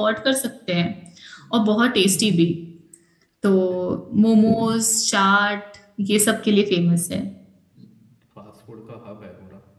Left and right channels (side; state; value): both; identical; correlation 1.00